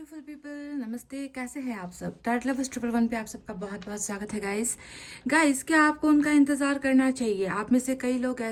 people, नमस्ते। कैसे हैं आप सब? टाइट लवर्स 111 पे आप सबका बहुत बहुत स्वागत है गाइस। क्या आपको उनका इंतज़ार करना चाहिए? आप में से कई लोग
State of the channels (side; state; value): both; identical; correlation 1.00